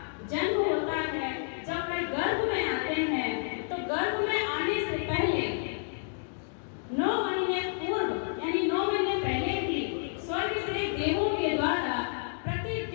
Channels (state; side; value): silent; right; digital silence